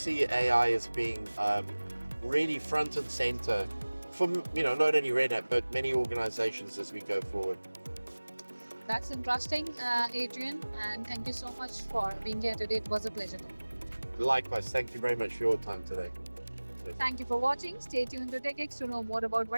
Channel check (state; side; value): inverted; both; correlation -1.00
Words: AI as being really front and center for not only RedHat but many organizations as we go forward. That's interesting, Adrian, and thank you so much for being here today. It was a pleasure. Likewise, thank you very much for your time today. Thank you for watching. Stay tuned to TECHx to know more about